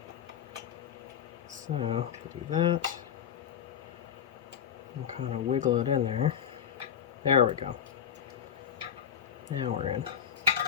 So, we'll do that. And kind of wiggle it in there. There we go. Now we're in.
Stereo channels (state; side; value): quieter; right; 8.7 dB